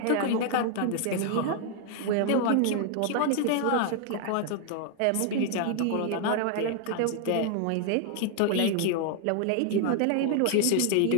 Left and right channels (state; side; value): different; both; correlation 0.00